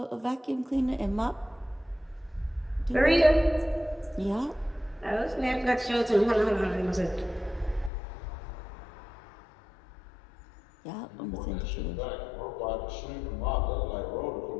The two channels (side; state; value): right; drops out; at 7.9 s